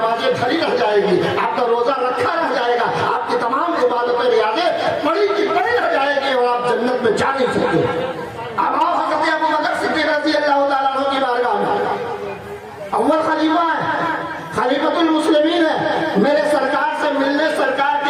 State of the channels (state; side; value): identical; both; correlation 1.00